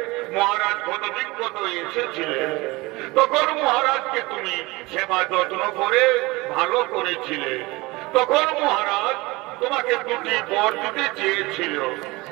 মহারাজ কত বিজ্ঞত এসেছিলেন, তখন মহারাজকে তুমি সেবা যত্ন করে ভালো করেছিলে। তখন মহারাজ তোমাকে দুটি বর দিতে চেয়েছিল।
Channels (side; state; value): left; quieter; 22.6 dB